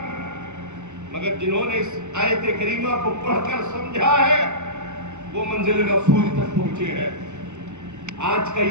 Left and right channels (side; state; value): left; late; 0.84 ms